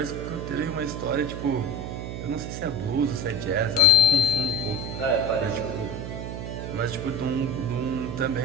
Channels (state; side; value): noise; right; hum, 6 dB below the sound